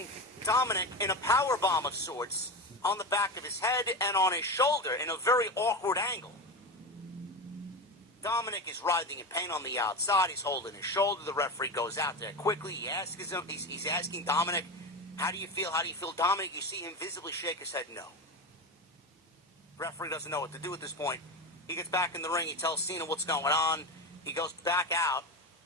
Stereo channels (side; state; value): both; normal; correlation 0.21